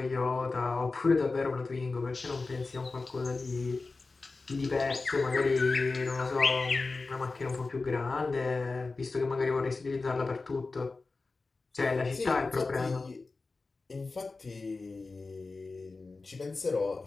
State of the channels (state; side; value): quieter; right; 3.8 dB